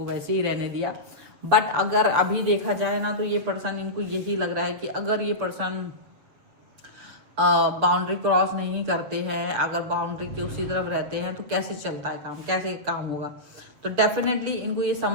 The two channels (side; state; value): left; late; 7.5 ms